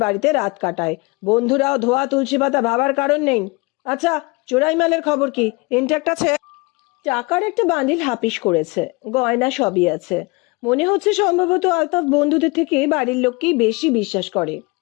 বাড়িতে রাত কাটায়। বন্ধুরাও ধোয়া তুলসী পাতা ভাবার কারণ নেই। আচ্ছা, চোরাই মালের খবর কি? ইনট্যাক্ট আছে? টাকার একটা বান্ডিল হাপিস করেছে, গয়না সবই আছে। মনে হচ্ছে সম্ভবত আলতাফ বন্ধুদের থেকে বাড়ির লোককেই বেশি বিশ্বাস করে।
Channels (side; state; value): right; quieter; 26.2 dB